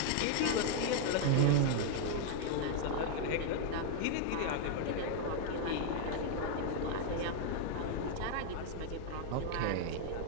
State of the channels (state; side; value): different; both; correlation 0.00